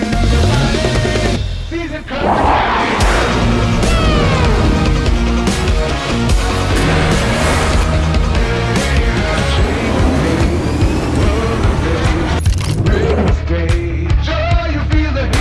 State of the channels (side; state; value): both; identical; correlation 1.00